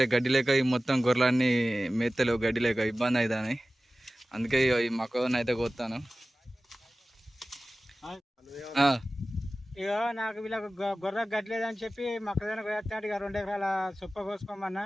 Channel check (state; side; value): normal; both; correlation 0.96